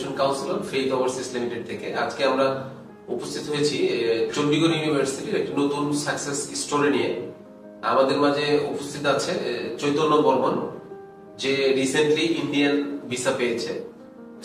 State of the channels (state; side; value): identical; both; correlation 1.00